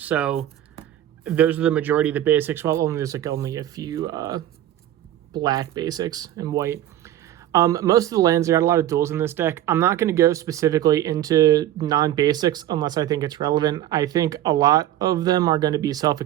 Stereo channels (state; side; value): quieter; left; 12.6 dB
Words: those are the majority of the basics. Well, there's only a few black basics and white. Most of the lands, got a lot of duals in this deck. I'm not going to go specifically into non-basics unless I think it's relevant. I think a lot of them are going to be